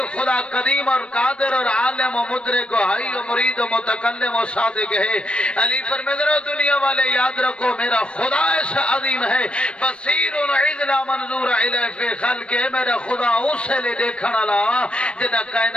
خدا قدیم اور قادر اور عالم و مدرک و حی و مرید و متکلم و صادق ہے۔ علی فرمیدن دنیا والے یاد رکھو میرا خدا ایسا عظیم ہے، بصیر و عزلا منظور علیہ فی خلق ہے، میرا خدا اسے لے دیکھنا لا جنہاں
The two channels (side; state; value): right; late; 0.058 ms